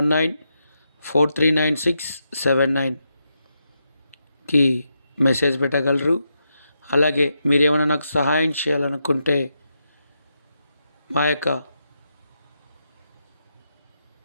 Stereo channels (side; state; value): both; inverted; correlation -0.84